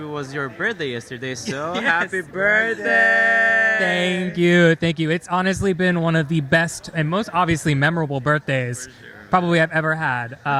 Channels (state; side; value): identical; both; correlation 1.00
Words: was your birthday yesterday, so Yes. happy birthday! Thank you. Thank you. It's honestly been one of the best and most obviously memorable birthdays probably I've ever had.